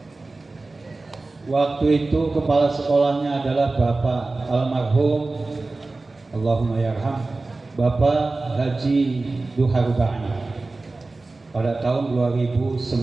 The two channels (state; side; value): quieter; left; 3.3 dB